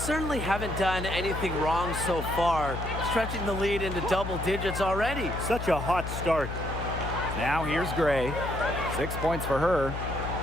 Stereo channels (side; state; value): left; noise; hum, 6 dB below the sound